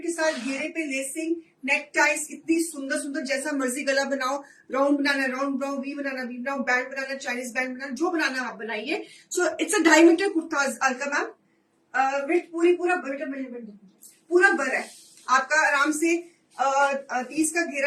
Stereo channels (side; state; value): both; identical; correlation 1.00